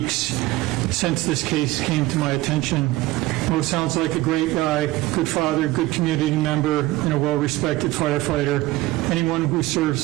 since this case came to my attention. Mo sounds like a great guy, good father, good community member, and a well-respected firefighter. Anyone who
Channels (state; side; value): quieter; left; 18.2 dB